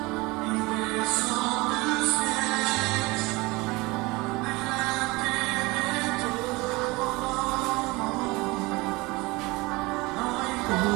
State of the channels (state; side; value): quieter; left; 23.4 dB